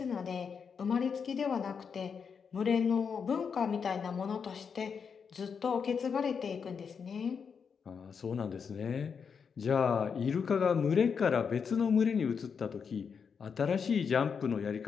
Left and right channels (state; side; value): quieter; right; 6.3 dB